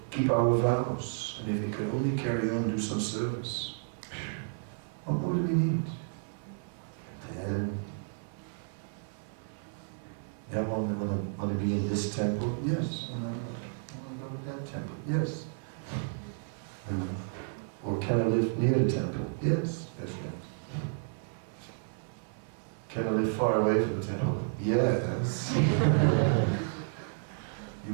vows, and if we could only carry on, do some service, what more do we need? Then, yeah, want to be in this temple? Yes. Want to go to that temple? Yes. Or can I live near the temple? Yes. Yes. Can I live far away from the temple? Yes.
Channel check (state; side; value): silent; left; 56 dB below the other